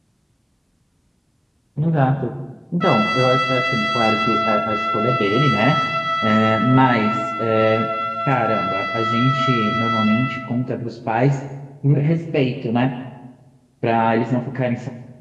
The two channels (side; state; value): both; identical; correlation 1.00